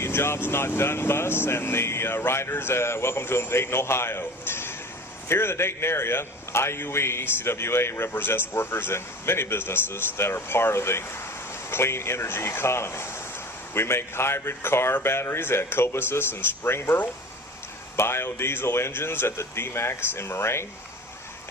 Jobs Not Done bus and the riders. Welcome to Dayton, Ohio. Here in the Dayton area, IUE CWA represents workers in many businesses that are part of the clean energy economy. We make hybrid car batteries at Cobussus and Springboro, biodiesel engines at the D-Max in Moraine,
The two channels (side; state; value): both; normal; correlation 0.38